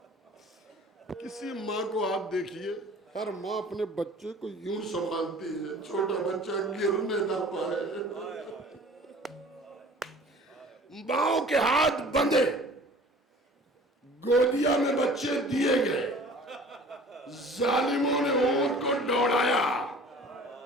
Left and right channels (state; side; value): normal; both; correlation 0.47